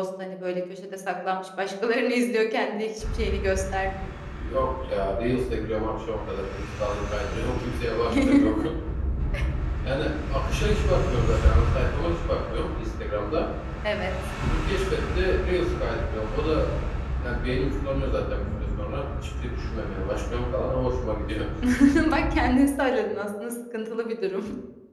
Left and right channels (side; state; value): both; identical; correlation 1.00